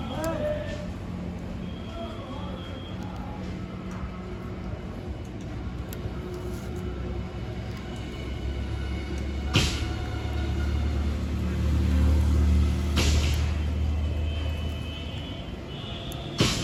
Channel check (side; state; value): both; identical; correlation 1.00